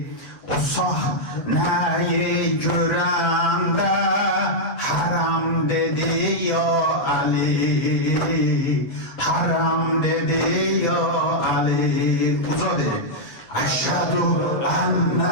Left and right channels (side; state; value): right; late; 7.8 ms